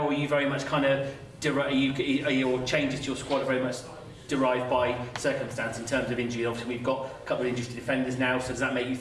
are you very much kind of, are your changes to your squad are very much derived by circumstance in terms of injury? Obviously we've got a couple of injuries to defenders now, so does that make you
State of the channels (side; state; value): both; identical; correlation 1.00